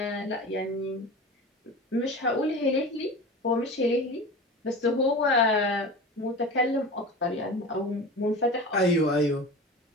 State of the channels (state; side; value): normal; both; correlation 0.32